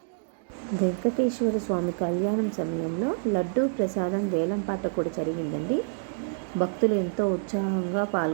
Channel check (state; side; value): silent; left; digital silence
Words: వెంకటేశ్వర స్వామి కళ్యాణం సమయంలో లడ్డూ ప్రసాదం వేలంపాట కూడా జరిగిందండి. భక్తులు ఎంతో ఉత్సాహంగా